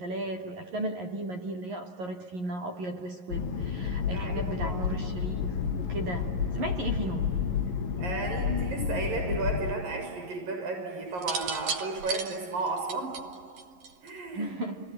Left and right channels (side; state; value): left; late; 11 ms